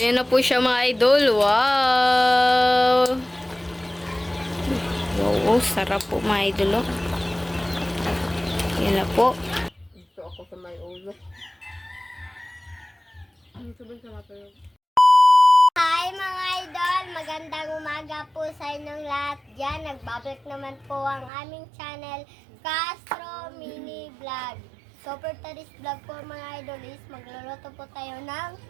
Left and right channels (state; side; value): drops out; left; at 21.3 s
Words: na po siya mga idol. Wow! Wow, sarap po mga idol. Oh. Ayan na po. Ito ako sa may ulo. Hi mga idol! Magandang umaga po sa inyong lahat dyan. Nagbabalik naman po ang aming channel, Castro Mini Vlog. So for today's vlog po mga idol is magluluto po tayo